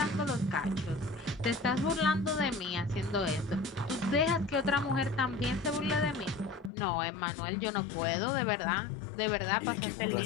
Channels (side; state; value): right; drops out; at 6.7 s